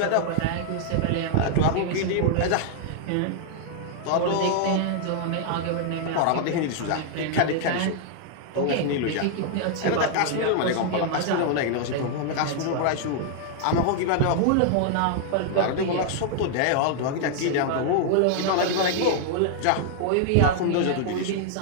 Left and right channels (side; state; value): both; different; correlation 0.00